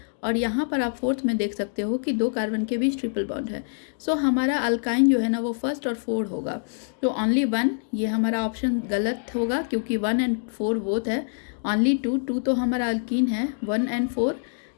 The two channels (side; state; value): right; silent; digital silence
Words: और यहाँ पर आप फोर्थ में देख सकते हो कि दो कार्बन के बीच ट्रिपल बॉन्ड है। सो हमारा अल्काइन जो है ना वो फर्स्ट और फोर्थ होगा। तो ओनली वन, ये हमारा ऑप्शन गलत होगा क्योंकि 1 एंड 4 बोथ है। ओनली 2 तो हमारा अल्कीन है। 1 एंड 4